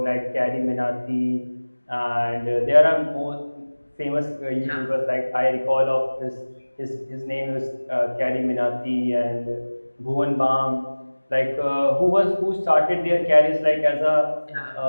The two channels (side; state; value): both; inverted; correlation -1.00